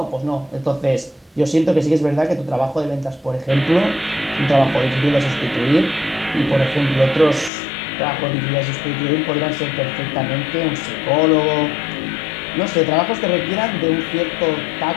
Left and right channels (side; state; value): right; drops out; at 7.5 s